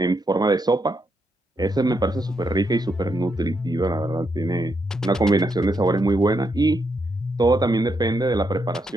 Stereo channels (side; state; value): both; normal; correlation 0.80